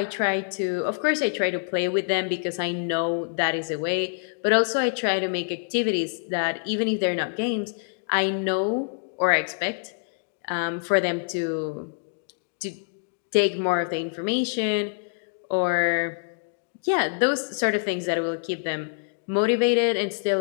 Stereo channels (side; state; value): right; silent; digital silence